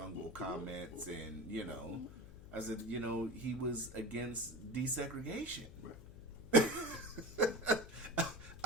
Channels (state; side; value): noise; left; hum, 16 dB below the sound